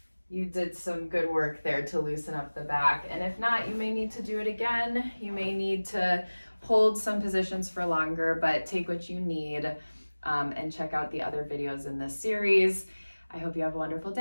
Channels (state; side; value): inverted; both; correlation -1.00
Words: you did some good work there to loosen up the back. And if not, you may need to do it again. You may need to hold some positions for longer, but take what you need and check out the other videos in this series. I hope you have a wonderful